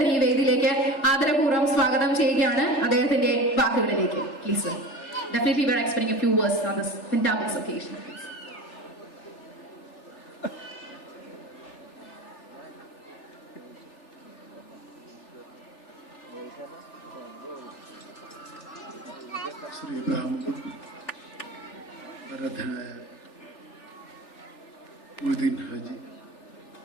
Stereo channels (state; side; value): late; right; 3.4 ms